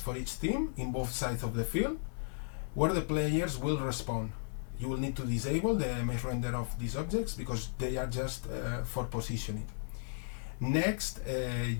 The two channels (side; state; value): right; silent; digital silence